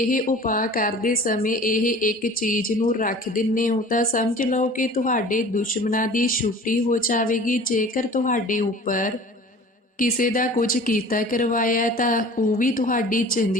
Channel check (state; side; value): normal; both; correlation 0.44